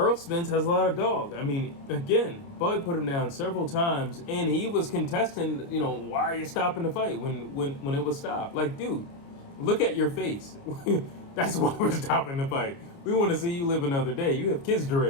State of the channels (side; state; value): right; late; 29 ms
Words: Spence has a lot of dog. I mean, again, Bud put him down several times, and he was contesting, why are you stopping the fight when it was stopped? Like, dude, look at your face. That's why we're stopping the fight. We want to see you live another day. You have kids to